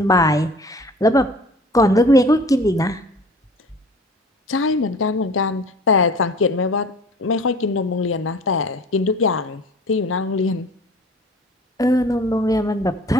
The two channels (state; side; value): normal; both; correlation 0.45